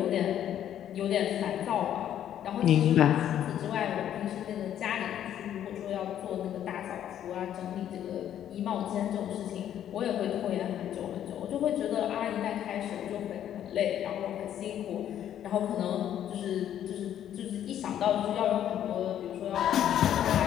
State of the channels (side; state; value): right; quieter; 10.6 dB